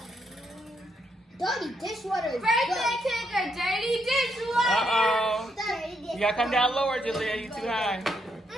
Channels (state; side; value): normal; both; correlation 0.77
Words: Dirty dishwater is Birthday cake or dirty dishwater. Uh-oh. Dirty dishwater. You gotta come down lower, Julia. You too high.